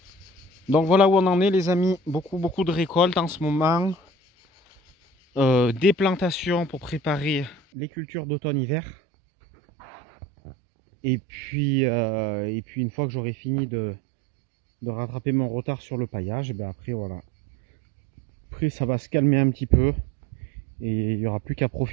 Donc voilà où on en est les amis, beaucoup de récoltes en ce moment. Des plantations pour préparer les cultures d'automne-hiver. Et puis une fois que j'aurai fini de rattraper mon retard sur le paillage, après voilà. Après ça va se calmer un petit peu. Et il n'y aura plus qu'à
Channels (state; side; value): drops out; left; at 7.6 s